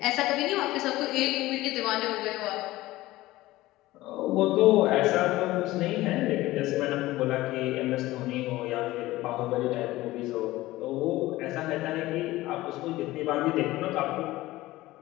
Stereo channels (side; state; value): right; quieter; 17.6 dB